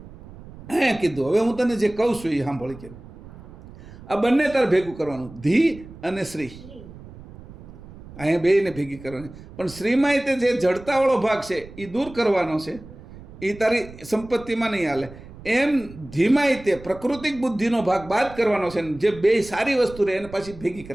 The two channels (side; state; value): right; noise; rumble, 18 dB below the sound